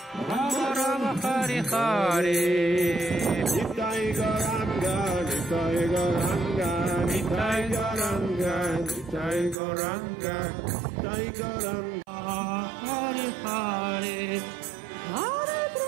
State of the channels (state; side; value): drops out; left; at 9.6 s